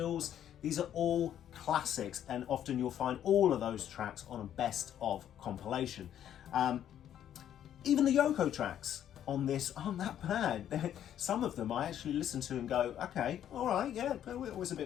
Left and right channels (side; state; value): right; quieter; 10.5 dB